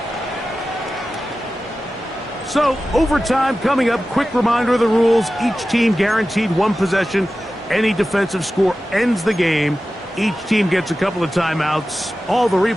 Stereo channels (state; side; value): normal; both; correlation 0.94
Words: So, overtime coming up. Quick reminder of the rules. Each team guaranteed one possession. Any defensive score ends the game. Each team gets a couple of timeouts. All the